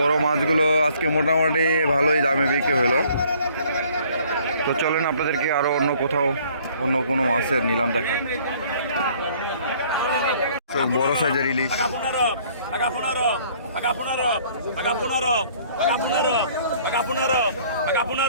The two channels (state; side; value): inverted; both; correlation -0.58